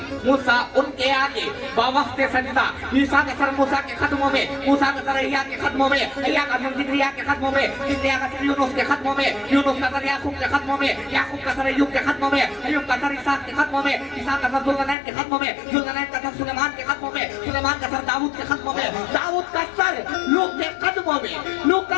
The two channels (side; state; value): right; drops out; at 15.0 s